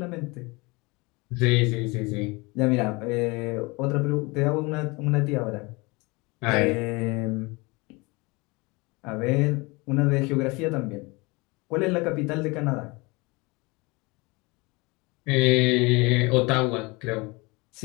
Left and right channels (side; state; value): right; quieter; 25.8 dB